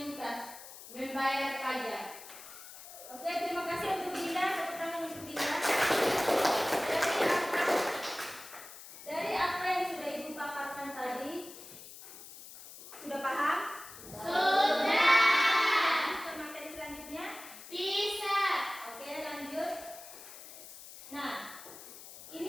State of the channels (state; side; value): noise; left; hiss, 15 dB below the sound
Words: membayar pajak. Oke, terima kasih untuk Dinda. Tepuk tangan untuk Dinda. Dari apa yang sudah ibu paparkan tadi, sudah paham? Sudah. Ke materi selanjutnya. Bisa. Oke, lanjut. Nah,